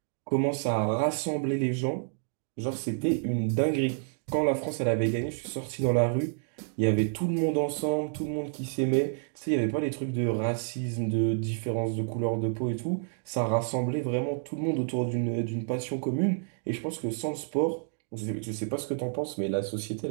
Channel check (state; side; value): silent; left; digital silence